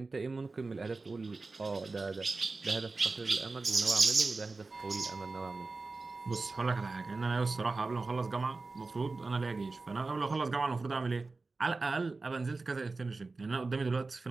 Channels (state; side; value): quieter; left; 3.7 dB